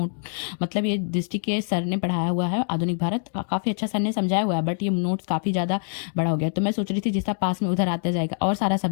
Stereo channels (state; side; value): silent; right; digital silence